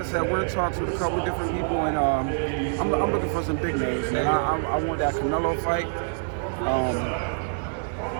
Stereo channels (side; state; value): left; silent; digital silence